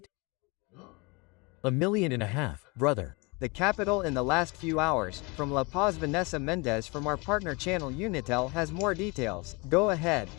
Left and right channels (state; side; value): quieter; right; 28.0 dB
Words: 1.5 million, brother. The capital in the last few hours. From La Paz, Vanessa Mendez from our partner channel Unitel has more details. Go ahead.